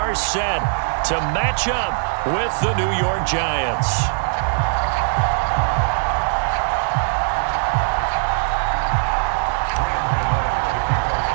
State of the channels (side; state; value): left; silent; digital silence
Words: set to match up with the New York Giants.